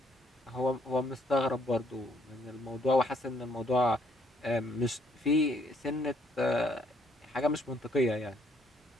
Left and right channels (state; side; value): normal; both; correlation 0.68